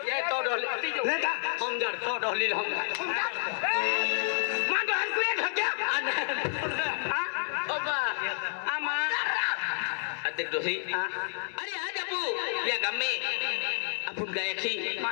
ये तो डोली नेता हम जड़ तो डोली हम मां तो हर कोई हो गया ओबा आमा अध्यक्ष दोही अरे आज अपू या गाम में अपन गए थी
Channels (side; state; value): right; silent; 58 dB below the other